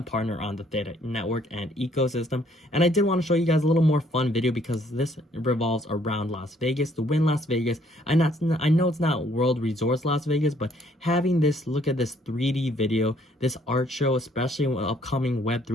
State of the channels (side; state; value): both; normal; correlation 0.64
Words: partner on the Theta Network and ecosystem. And I did want to show you guys a little more fun video because this revolves around Las Vegas, the Win Las Vegas. I know it's not World Resorts Las Vegas, but having this, look at this 3D video, this art show, especially with upcoming